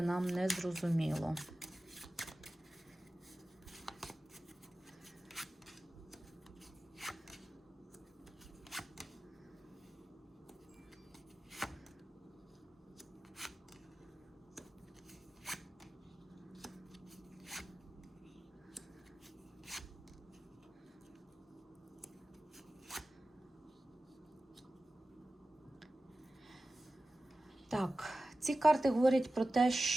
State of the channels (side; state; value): both; normal; correlation 0.95